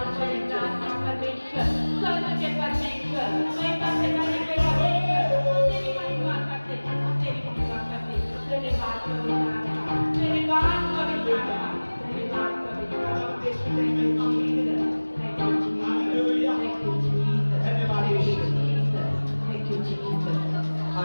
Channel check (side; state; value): both; inverted; correlation -1.00